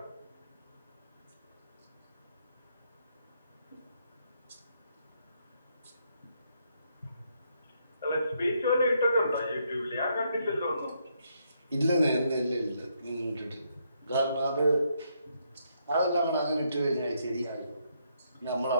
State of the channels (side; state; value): both; inverted; correlation -0.75